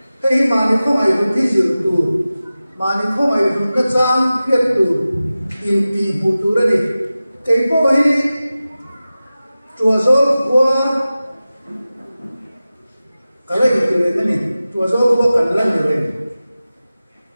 cái mà nó không ai được cái gì tu mà nó không ai được cái trang thiết tu in ti bu tu ra đi cái bộ hi chùa dỗ qua cái này cái này chùa dỗ qua cái lần này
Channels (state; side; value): inverted; both; correlation -0.95